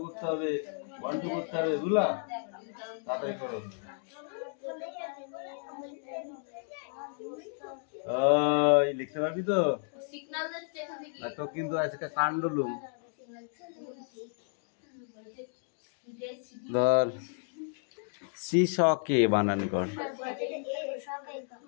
করতে হবে, 1 2 করতে হবে, বুঝলা? তাড়াতাড়ি করো। ওই লিখতে পারবি তো? তো কিন্তু আজকে কাণ্ডলুম। ধর শ্রীশকে বানান কর।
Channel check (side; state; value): right; silent; 56 dB below the other